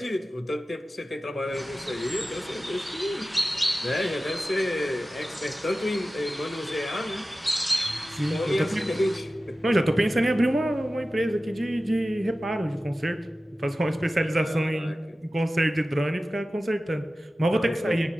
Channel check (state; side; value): normal; both; correlation 0.95